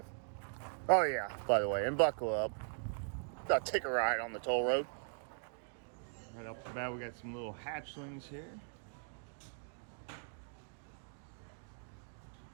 Oh yeah, by the way, and buckle up. Gotta take a ride on the toll road. Right off the bat, we got some little hatchlings here.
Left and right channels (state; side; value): silent; left; digital silence